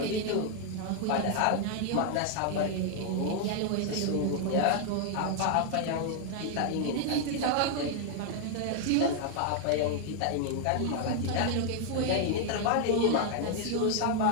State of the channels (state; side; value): different; both; correlation 0.00